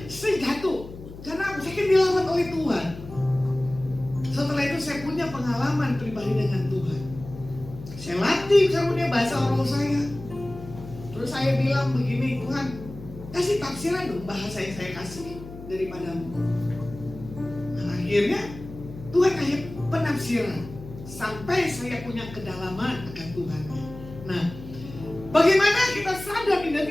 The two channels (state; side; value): noise; left; hum, 14 dB below the sound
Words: saya jatuh, karena saya kan dilawat oleh Tuhan. Setelah itu saya punya pengalaman pribadi dengan Tuhan. Saya latih karunia bahasa roh saya. Terus saya bilang begini, Tuhan kasih tafsiran dong bahasa yang saya kasih daripadamu. Nah, akhirnya Tuhan kasih penafsiran sampai saya punya kedalaman akan Tuhan. Nah, bagaimana kita sadar